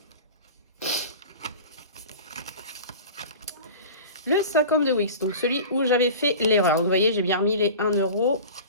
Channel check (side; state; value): both; inverted; correlation -0.36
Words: Le 50 de Wix, donc celui où j'avais fait l'erreur. Vous voyez, j'ai bien remis les 1 euro.